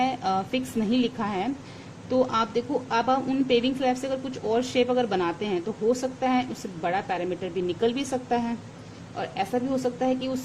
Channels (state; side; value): identical; both; correlation 1.00